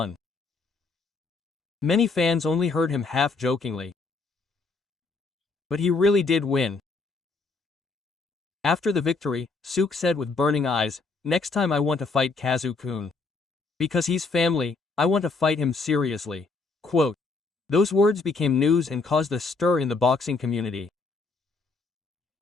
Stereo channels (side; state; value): right; quieter; 4.0 dB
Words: Many fans only heard him half-jokingly. But he really did win. After the victory, Suk said with burning eyes, "Next time I want to fight Kazu-kun. Because he's family, I want to fight him seriously." Quote. Those words became news and caused a stir in the boxing community.